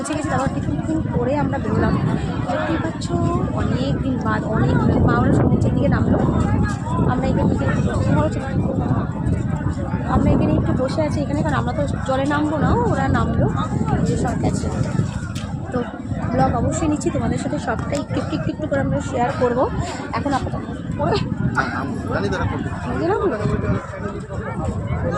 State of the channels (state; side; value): identical; both; correlation 1.00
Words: গেছি। তারপর টিফিন করে আমরা বেরোলাম। দেখতেই পাচ্ছ অনেক দিন বাদ, অনেক মা ওরা সমুদ্রের দিকে নামলো। আমরা এখানে একটু বসে আছি এখানে, কারণ আমরা তো জলে নামবো না, ওরা নামলো যে সব গেছে। তো ব্লগ অবশ্যই নিচ্ছি তোমাদের সাথে, সবটাই একটু একটু করে আমরা শেয়ার করবো। এখন আপাতত